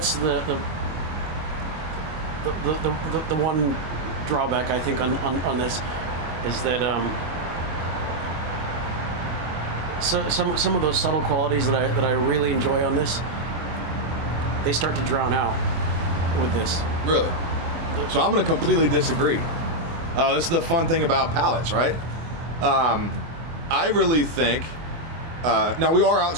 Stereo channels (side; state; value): left; late; 24 ms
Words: the one drawback I think on this is that so some of those subtle qualities that I really enjoy on this, they start to drown out with this. Really? So I'm going to completely disagree. This is the fun thing about palates, right? I really think, now we are